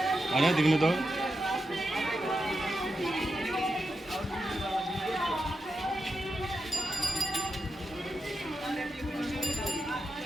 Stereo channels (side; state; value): both; normal; correlation 0.87